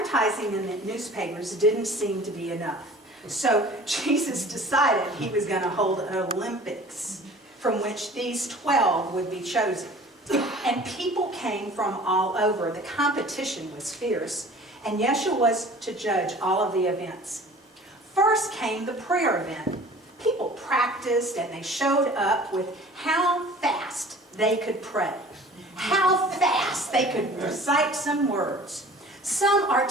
in the newspapers didn't seem to be enough. So Jesus decided he was going to hold an Olympics from which these 12 would be chosen. And people came from all over. The competition was fierce, and Yeshua was to judge all of the events. First came the prayer event. People practiced and they showed up with how fast they could pray, how fast they could recite some words. Some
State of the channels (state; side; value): normal; both; correlation 0.45